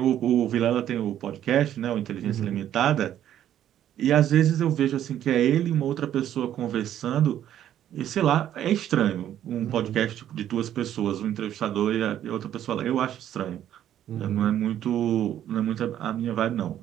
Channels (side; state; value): left; quieter; 11.1 dB